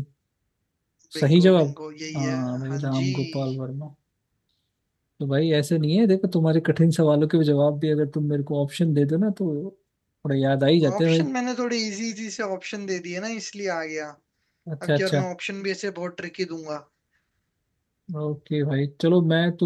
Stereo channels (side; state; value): both; identical; correlation 1.00